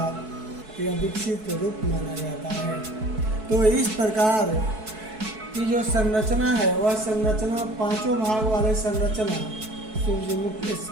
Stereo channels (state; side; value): late; left; 4.6 ms